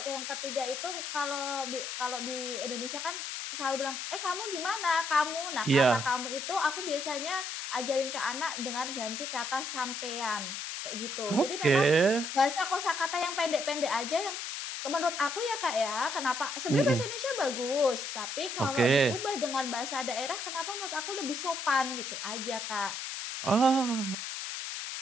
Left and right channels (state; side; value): noise; left; hiss, 5 dB below the sound